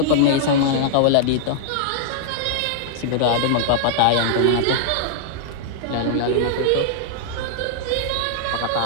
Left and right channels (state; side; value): different; both; correlation -0.01